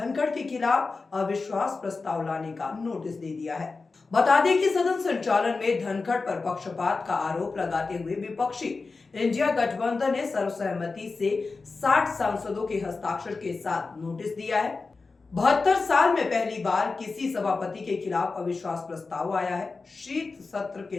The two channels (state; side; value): quieter; right; 4.1 dB